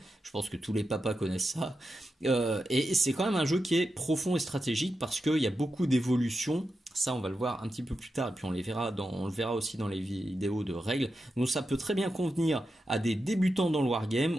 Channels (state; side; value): normal; both; correlation 0.89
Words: Je pense que tous les papas connaissent ça. Et c'est quand même un jeu qui est profond et stratégique parce qu'il y a beaucoup d'évolutions. Ça, on va le voir un petit peu plus tard, et puis on le verra aussi dans les vidéos de règles. Donc ça peut très bien convenir à des débutants dans le